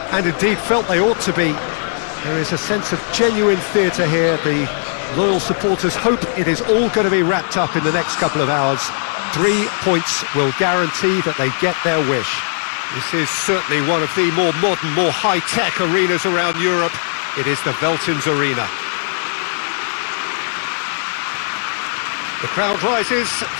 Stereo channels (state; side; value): silent; right; digital silence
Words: and indeed felt they ought to be. There is a sense of genuine theatre here. The loyal supporters hope it is all going to be wrapped up in the next couple of hours. 3 points will guarantee that they get their wish. This is certainly one of the more modern, more high-tech arenas around Europe. It is the Veltins Arena. The crowd rises